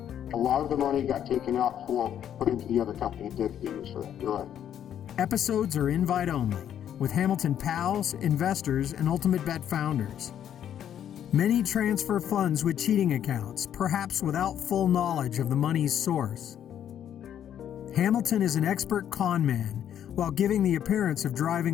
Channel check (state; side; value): quieter; right; 9.9 dB